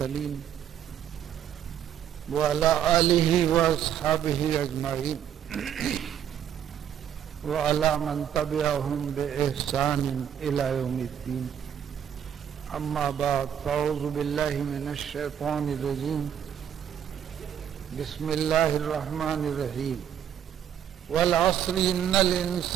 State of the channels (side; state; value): left; quieter; 9.5 dB